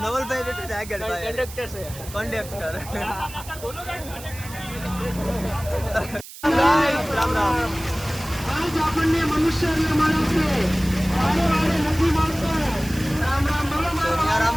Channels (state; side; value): noise; right; hiss, 15 dB below the sound